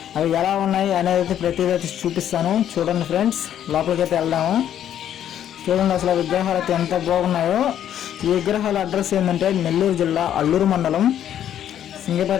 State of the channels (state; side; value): quieter; right; 10.4 dB